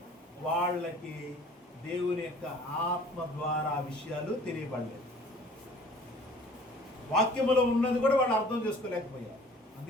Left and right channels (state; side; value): normal; both; correlation 0.50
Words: వాళ్ళకి దేవుని యొక్క ఆత్మ ద్వారా విషయాలు తెలియబడలేదు. వాక్యములో ఉన్నది కూడా వాళ్ళు అర్థం చేసుకోలేకపోయారు.